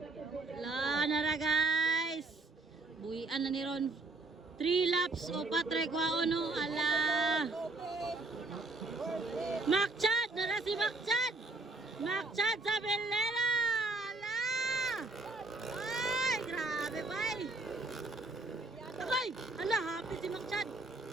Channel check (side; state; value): left; quieter; 3.3 dB